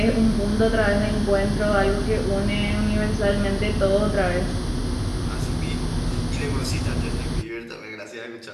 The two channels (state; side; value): identical; both; correlation 1.00